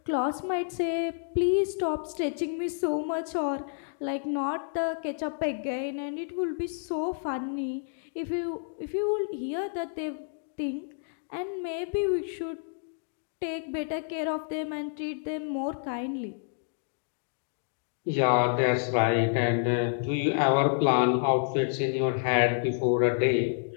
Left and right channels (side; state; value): right; silent; digital silence